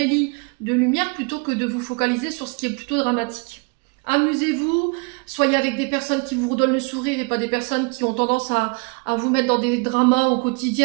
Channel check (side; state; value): left; quieter; 33.4 dB